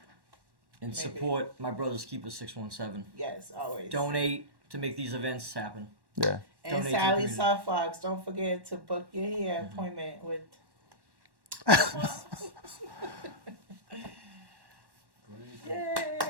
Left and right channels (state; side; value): late; left; 1.1 ms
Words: And Maybe. support my brothers Keeper 617. Yes, always. Donate to make these events happen. yeah. And donate to the Sally community. Softfox, don't forget to book your hair appointment with.